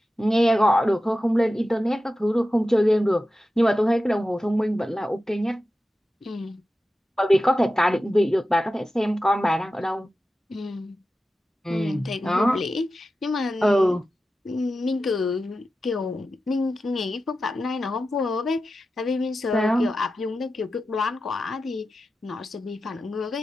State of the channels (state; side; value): normal; both; correlation 0.92